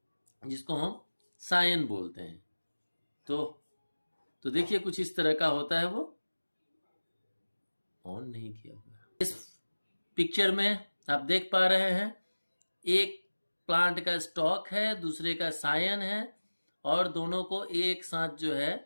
जिसको हम सायन बोलते हैं। तो देखिए कुछ इस तरह का होता है। वो ऑन नहीं किया हुआ। इस पिक्चर में आप देख पा रहे हैं, एक प्लांट का स्टॉक है, दूसरे का सायन है, और दोनों को एक साथ जो है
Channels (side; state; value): both; inverted; correlation -1.00